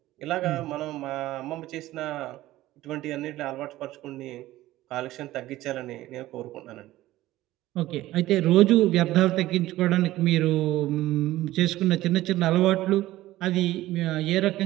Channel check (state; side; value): quieter; left; 16.0 dB